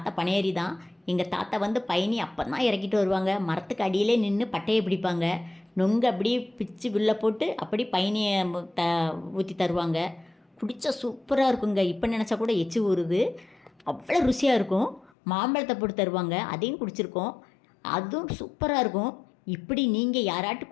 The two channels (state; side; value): drops out; right; at 15.1 s